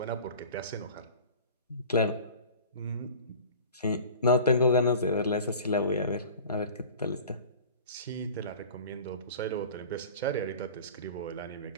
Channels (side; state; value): both; inverted; correlation -0.41